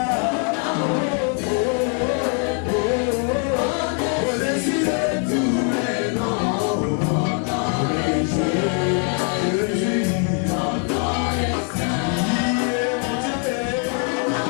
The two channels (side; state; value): right; quieter; 36.4 dB